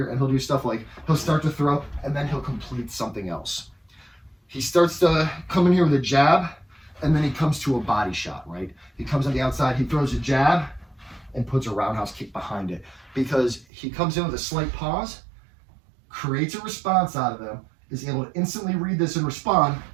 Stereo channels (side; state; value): left; drops out; at 13.7 s